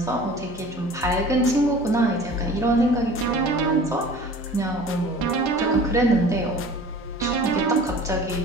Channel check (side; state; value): both; normal; correlation 0.43